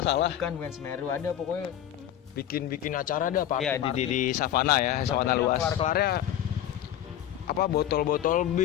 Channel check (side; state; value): right; quieter; 11.4 dB